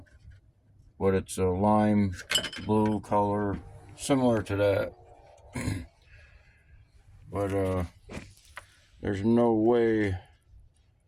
But it's a lime blue color, similar to that. But there's no way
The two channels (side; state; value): both; identical; correlation 1.00